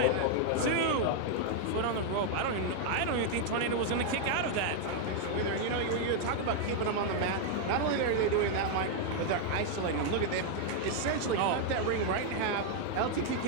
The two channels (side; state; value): both; different; correlation 0.00